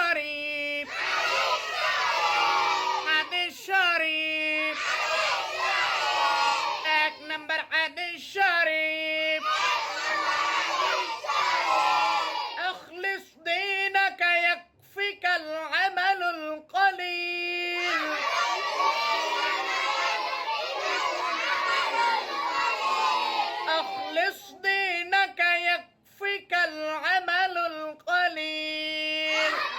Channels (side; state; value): both; identical; correlation 1.00